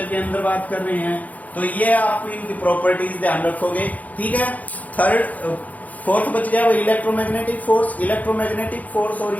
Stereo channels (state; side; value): late; right; 0.076 ms